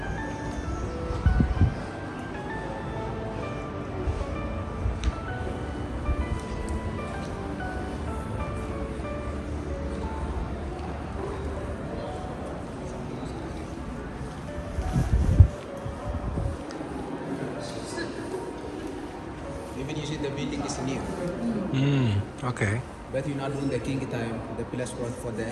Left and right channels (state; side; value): identical; both; correlation 1.00